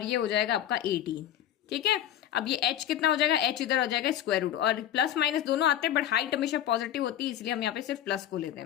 ये हो जाएगा आपका 18, ठीक है। अब ये h कितना हो जाएगा, h इधर हो जाएगा स्क्वायर रूट, और प्लस माइनस दोनों आते हैं, बट हाइट हमेशा पॉजिटिव होती है, इसलिए हम यहाँ पे सिर्फ प्लस को लेते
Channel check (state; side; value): quieter; right; 11.1 dB